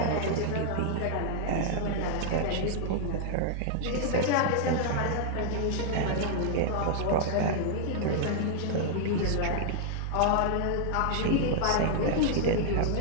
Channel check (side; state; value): both; different; correlation -0.01